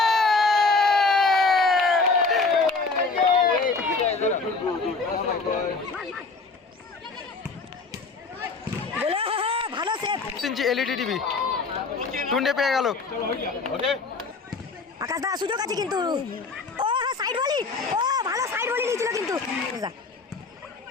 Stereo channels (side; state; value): right; quieter; 4.1 dB